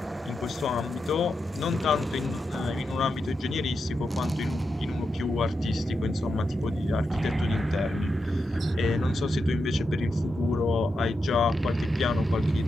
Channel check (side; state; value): both; normal; correlation 0.87